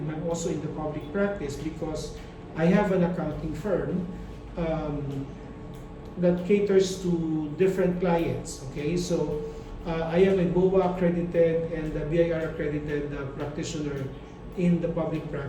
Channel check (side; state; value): both; identical; correlation 1.00